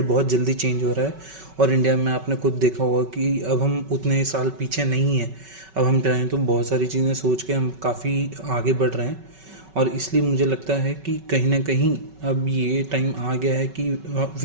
बहुत जल्दी चेंज हो रहा है, और इंडिया में आपने खुद देखा होगा कि अब हम उतने साल पीछे नहीं हैं। अब हम चाहें तो बहुत सारी चीज़ें सोच के हम काफ़ी आगे बढ़ रहे हैं, और इसलिए मुझे लगता है कि कहीं ना कहीं अब ये टाइम आ गया है कि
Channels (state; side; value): late; left; 5.3 ms